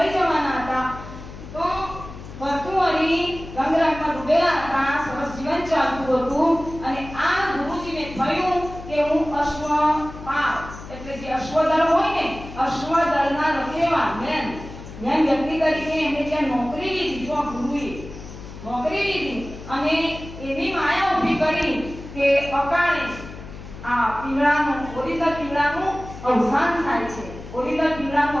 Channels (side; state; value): left; noise; hum, 13 dB below the sound